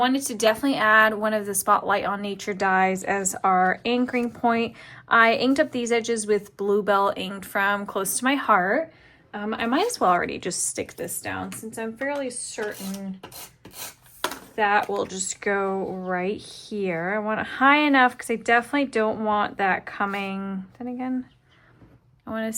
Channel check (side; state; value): both; identical; correlation 1.00